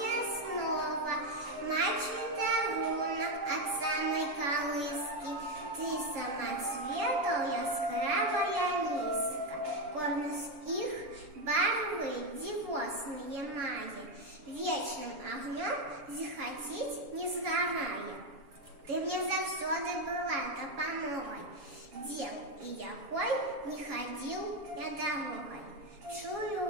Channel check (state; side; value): late; left; 7.2 ms